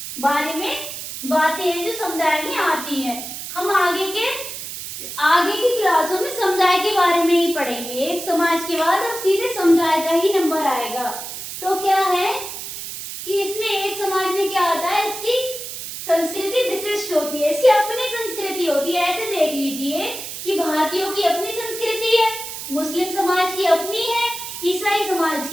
बारे में बातें हैं जो समुदाय में आती हैं। हम आगे की क्लासों में समुदाय के बारे में ही पढ़ेंगे। एक समाज के बाद अब सीधे समुदाय का ही नंबर आएगा। तो क्या है कि इसमें एक समाज में क्या होता है? इसकी संस्कृति विशिष्ट होती है, इसकी अपनी संस्कृति होती है। ऐसे देख लीजिए कि भारतीयों की अपनी संस्कृति है, मुस्लिम समाज की अपनी है, ईसाई समाज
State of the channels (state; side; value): noise; right; hiss, 8 dB below the sound